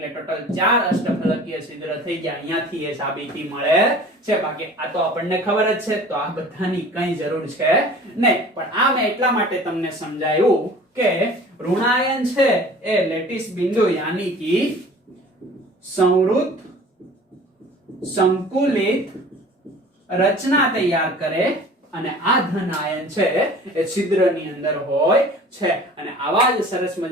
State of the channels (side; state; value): both; normal; correlation 0.45